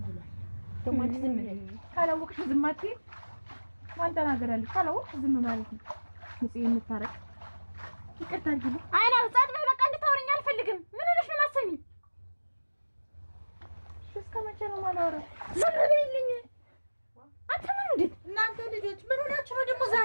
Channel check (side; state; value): both; inverted; correlation -1.00